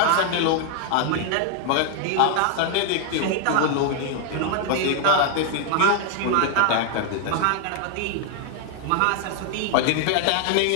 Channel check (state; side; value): different; both; correlation 0.00